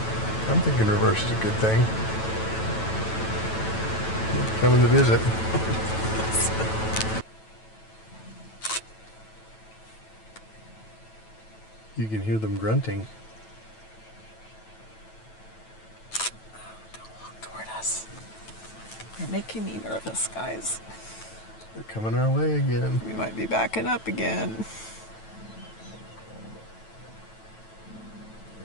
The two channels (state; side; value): late; right; 9.1 ms